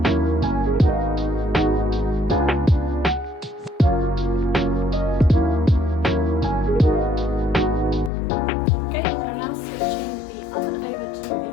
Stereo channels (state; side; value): drops out; right; at 8.1 s